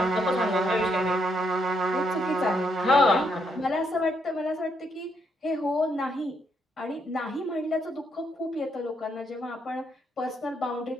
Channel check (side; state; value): both; normal; correlation 0.76